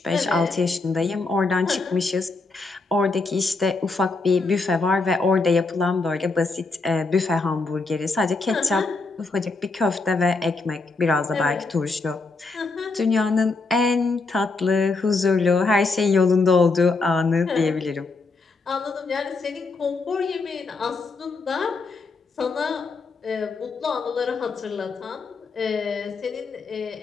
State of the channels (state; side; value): quieter; right; 3.8 dB